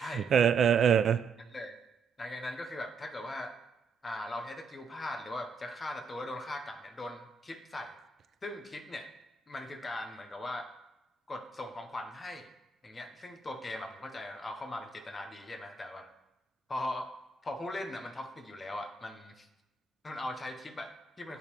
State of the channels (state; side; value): quieter; left; 4.7 dB